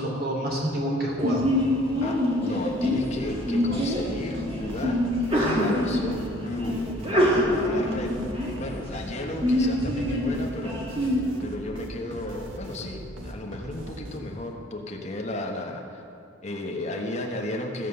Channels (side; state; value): both; normal; correlation 0.55